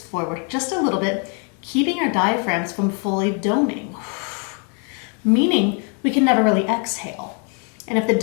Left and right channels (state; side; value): quieter; right; 38.7 dB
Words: forward just a little bit, keeping our diaphragms from fully doming, meaning we can never really exhale. And if the